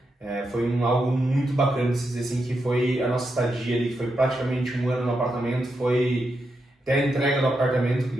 Foi algo muito bacana de se dizer, assim, que foi a nossa estadia ali, que foi praticamente 1 ano no apartamento, foi até a entrega do apartamento, que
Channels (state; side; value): normal; both; correlation 0.85